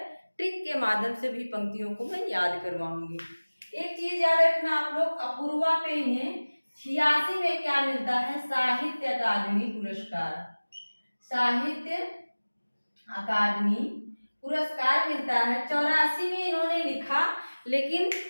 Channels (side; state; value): both; inverted; correlation -1.00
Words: ट्रिक के माध्यम से भी पंक्तियों को मैं याद करवाऊंगी। एक चीज याद रखना आप लोग, अपूर्वा पे इन्हें 86 में क्या मिलता है, साहित्य अकादमी पुरस्कार। साहित्य अकादमी पुरस्कार मिलता है। 84 में इन्होंने लिखा, लेकिन